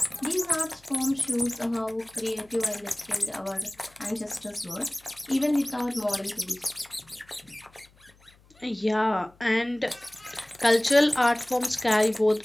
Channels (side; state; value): left; noise; hum, 29 dB below the sound